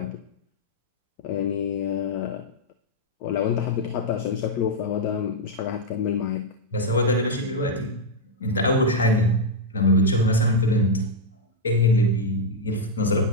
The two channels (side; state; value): both; normal; correlation -0.02